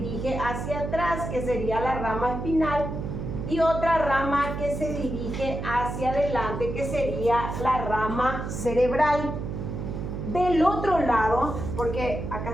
hacia atrás, que sería la rama espinal, y otra rama que se dirige hacia adelante, que sería la rama cerebral. Del otro lado, porque acá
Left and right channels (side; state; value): right; noise; hum, 5 dB below the sound